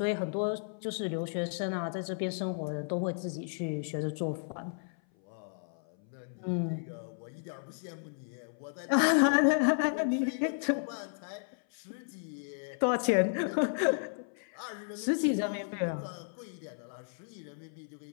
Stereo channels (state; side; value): silent; right; 55 dB below the other